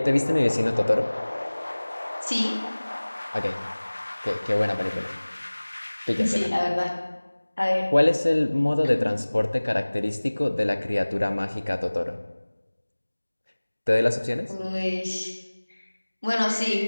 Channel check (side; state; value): both; inverted; correlation -1.00